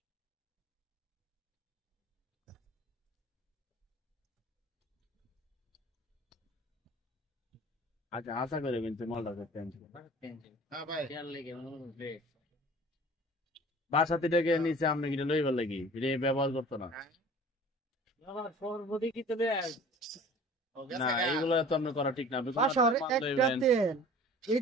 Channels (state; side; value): normal; both; correlation 0.45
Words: আচ্ছা আশা করে কিন্তু মালটা করতে হ্যাঁ ভাই লেগে বাসাতে ডেকে নিচে আপনি কিনে লইবার লাগি এটা ব্যবহার করতো না। সর্বদি কি তো ও না গেছে এইগুলো তো আপনি করা ঠিক না। আপনি কোনো বাসার মাল একটা লইবেন। তেল এই